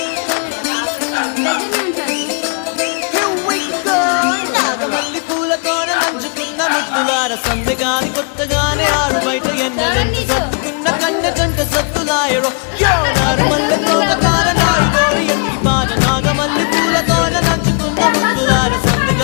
నాగమల్లి పూలతోన నంచుకున్న ముద్దులార సందెగాని కొత్తగానే ఆరు బయట ఎన్నెలెంట సత్తుకున్న కన్నె జంట సత్తులాయడో యోనారు మల్లె తోటకార నాయుడోరి ఎంటి పాట. నాగమల్లి పూలతోన నంచుకున్న ముద్దులార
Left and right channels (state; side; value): quieter; right; 37.8 dB